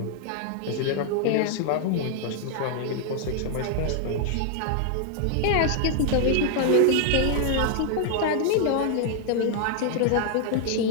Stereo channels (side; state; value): both; different; correlation 0.00